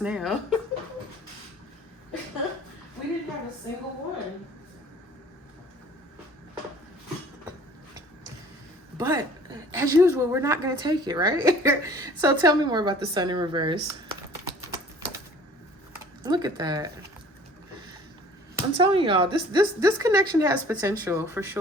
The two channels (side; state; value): both; normal; correlation 0.51